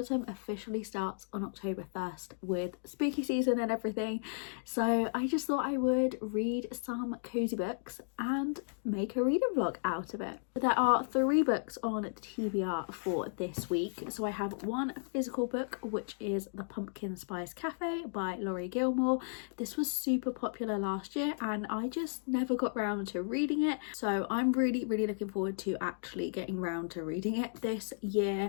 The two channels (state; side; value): silent; right; digital silence